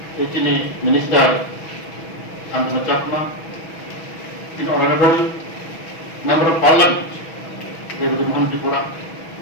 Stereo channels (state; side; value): late; right; 6.2 ms